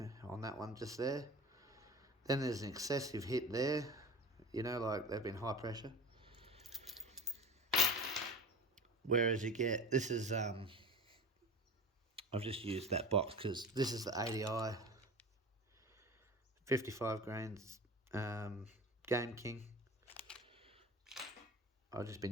on that one just there. Then there's an excessive hit there. You know, like, they've been high pressure. Whereas you get, this is, I've just used that box because this is the ADI 55 grains Game King. I've just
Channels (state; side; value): normal; both; correlation 0.33